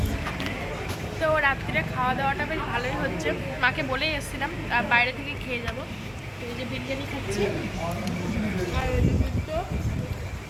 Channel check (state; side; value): identical; both; correlation 1.00